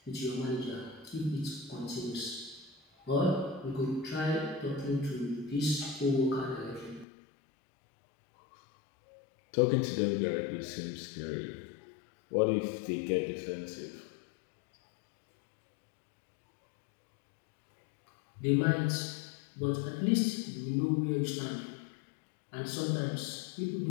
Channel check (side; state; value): right; drops out; at 7.1 s